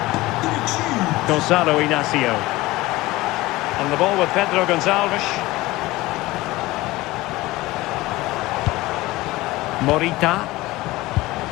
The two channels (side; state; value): right; quieter; 19.2 dB